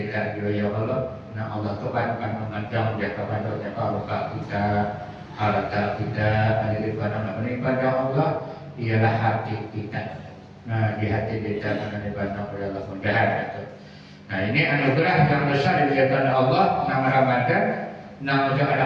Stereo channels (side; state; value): both; identical; correlation 1.00